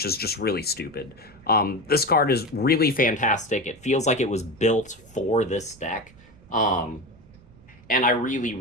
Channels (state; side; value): noise; right; rumble, 25 dB below the sound